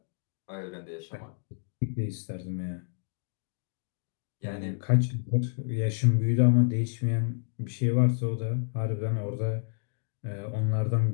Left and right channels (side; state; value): right; silent; digital silence